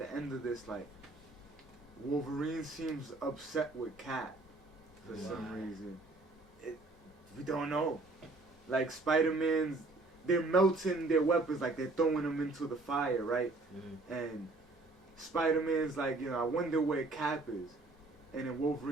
end of this, like, Wolverine seems upset with Cap for some reason. We don't know. Like, Spider-Man's, they're melting their weapons, like, they're throwing them into the fire, right? And Spider-Man's like, you know, I wonder where Cap is. And then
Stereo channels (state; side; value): quieter; left; 3.2 dB